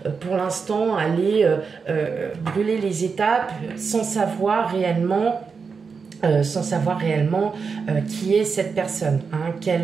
pour l'instant aller brûler les étapes sans savoir réellement qui est cette personne, hein,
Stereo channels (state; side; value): quieter; left; 5.3 dB